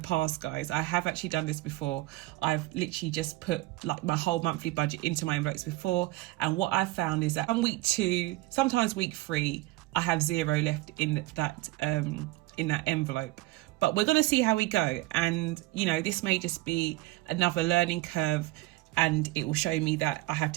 guys. I have actually done this before. I've literally just put like my whole monthly budget into my envelopes before. And what I've found is that on week 2, sometimes week 3, I have 0 left in that envelope. But we're going to see how we go. And, you know, this may just be another learning curve, and it will show me that I have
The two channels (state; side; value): quieter; left; 19.0 dB